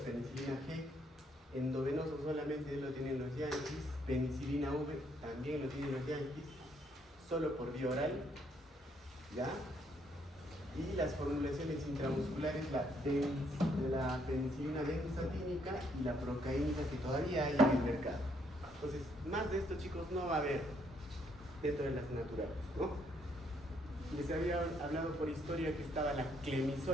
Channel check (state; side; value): normal; both; correlation 0.71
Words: G, endovenoso solamente lo tienen los yanquis, penicilina V también lo tienen los yanquis, solo por vía oral, ¿ya? Y las formulaciones intramusculares, la penicilina benzatínica y la procaínica, que todavía hay en el mercado. Entonces, más de esto, chicos, no va a haber dentro de las naturales, ¿no? Les había hablado por historia que estaba la